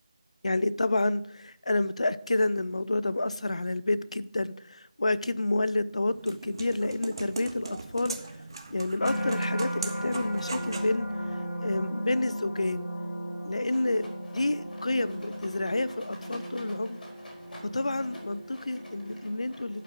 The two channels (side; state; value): both; inverted; correlation -0.93